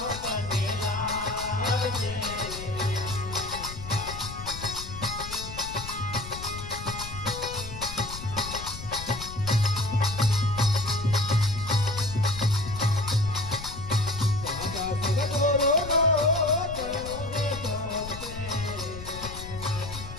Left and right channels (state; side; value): noise; left; rumble, 11 dB below the sound